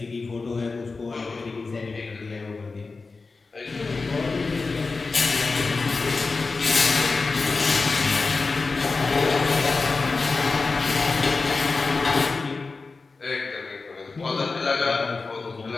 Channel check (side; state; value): right; quieter; 4.1 dB